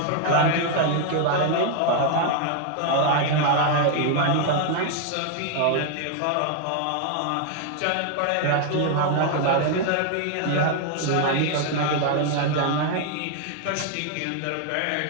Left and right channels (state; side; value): different; both; correlation 0.00